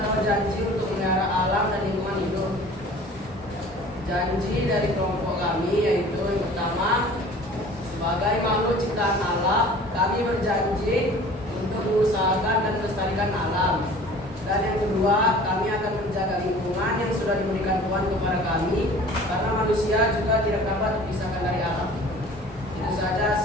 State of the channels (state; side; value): normal; both; correlation 0.46